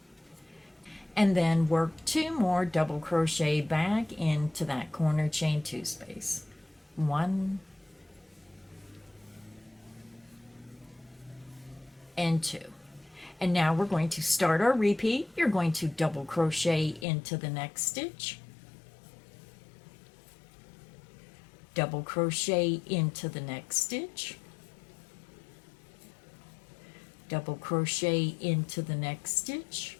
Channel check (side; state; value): right; drops out; at 17.1 s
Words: and then work 2 more double crochet back into that corner chain 2 space. 1 and 2. And now we're going to start our repeat. You're going to double crochet into the next stitch, double crochet into the next stitch, double crochet into the next stitch,